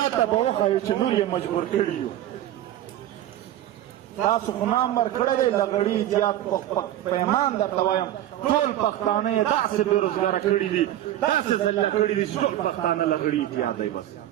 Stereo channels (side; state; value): left; quieter; 13.0 dB